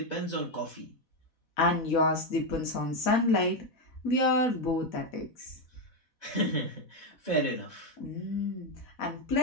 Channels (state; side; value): late; right; 4.1 ms